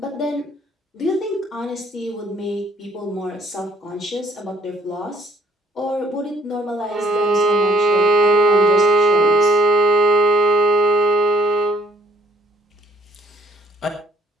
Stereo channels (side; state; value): both; normal; correlation 0.63